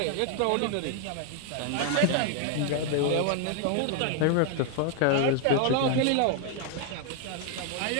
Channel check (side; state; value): both; different; correlation 0.00